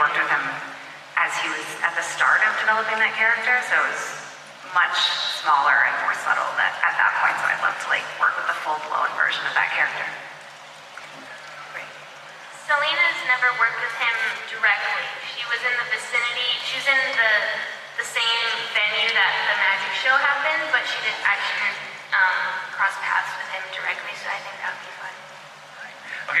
with him as he was at the start of developing that character, so it was much smaller and more subtle at that point. So I'd love to like work with the full-blown version of that character. Selena's never worked with him directly. She was in the vicinity. She was in the same venue that the magic show happened, but she didn't actually cross paths with him directly. So I think that would be fun.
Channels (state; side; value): identical; both; correlation 1.00